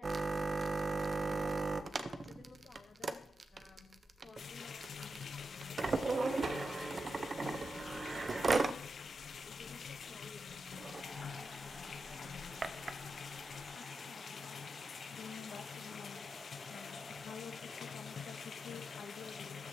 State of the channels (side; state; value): both; normal; correlation 0.89